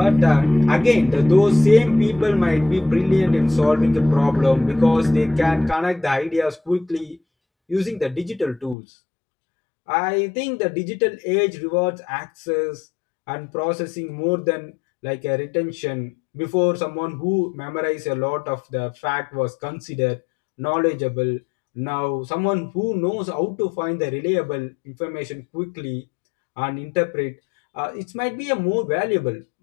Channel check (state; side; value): drops out; right; at 8.8 s